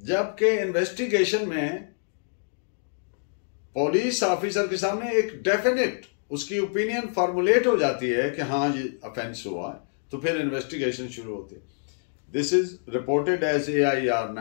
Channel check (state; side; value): silent; right; digital silence